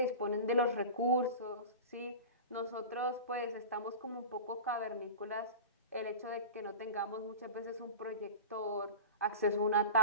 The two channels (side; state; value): both; inverted; correlation -0.32